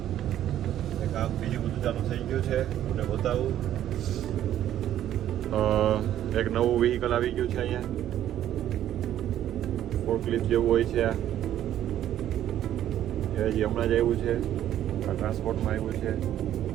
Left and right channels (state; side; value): quieter; left; 11.6 dB